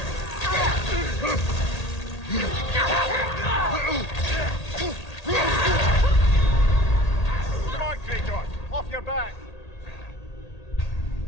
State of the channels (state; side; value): late; right; 1.8 ms